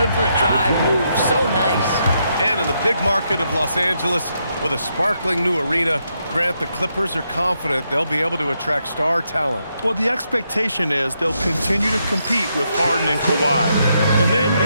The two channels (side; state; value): both; inverted; correlation -0.79